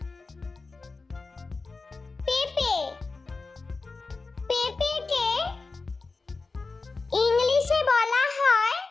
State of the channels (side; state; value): right; quieter; 3.9 dB